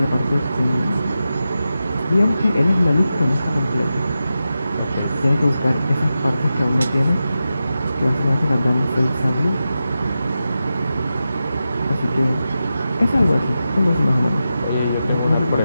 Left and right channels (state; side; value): inverted; both; correlation -0.91